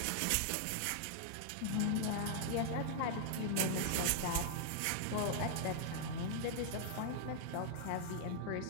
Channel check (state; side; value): different; both; correlation -0.01